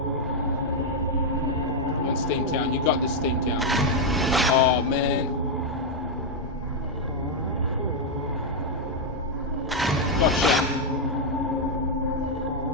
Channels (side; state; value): both; normal; correlation 0.00